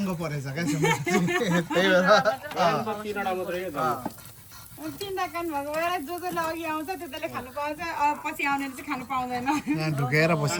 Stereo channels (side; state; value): both; identical; correlation 1.00